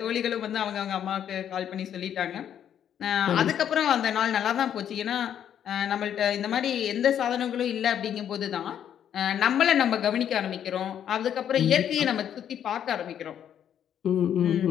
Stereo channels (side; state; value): right; quieter; 9.6 dB